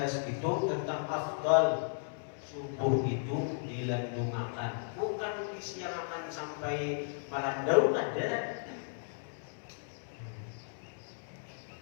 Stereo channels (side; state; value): right; silent; 54 dB below the other